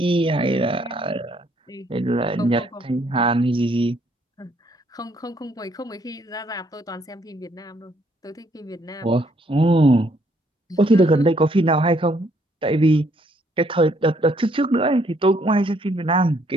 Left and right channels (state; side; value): normal; both; correlation 0.68